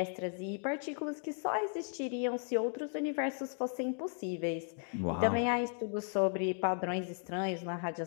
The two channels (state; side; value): silent; right; 54 dB below the other